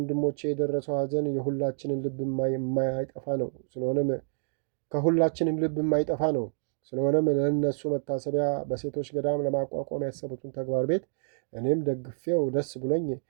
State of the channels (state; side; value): silent; left; digital silence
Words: የደረሰው ሐዘን የሁላችንን ልብ የማይጠፋ ነው። ከሁላችንም ልብ የማይጠፋ ነው። ስለሆነም ለእነሱ መታሰቢያ በሴቶች ገዳም ለማቋቋም ያሰቡትን ተግባር ቤት እኔም ደግፌው ደስ ብሎኝ